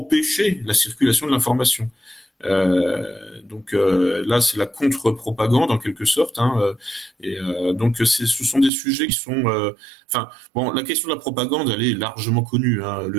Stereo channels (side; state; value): left; drops out; at 8.7 s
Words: la circulation de l'information. Là, c'est la contre-propagande en quelque sorte, donc ce sont des sujets qui sont, la question de la propagande, elle est largement connue,